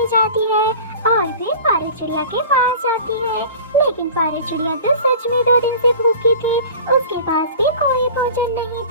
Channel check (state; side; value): inverted; both; correlation -0.39